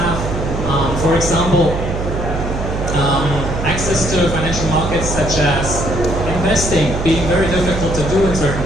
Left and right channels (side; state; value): right; noise; hum, 4 dB below the sound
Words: for example, access to financial markets such as investing being very difficult to do in certain